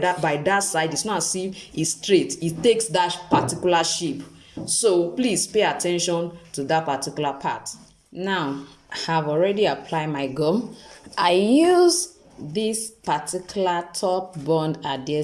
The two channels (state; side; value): identical; both; correlation 1.00